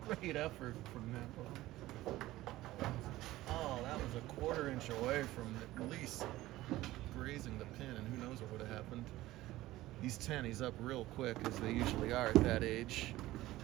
great effort from Namvong. Oh, that was a 1/4 inch away from at least grazing the pin, and who knows what would have happened. He's 10, he's up real quick, as they usually are at that age.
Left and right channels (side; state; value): left; quieter; 16.7 dB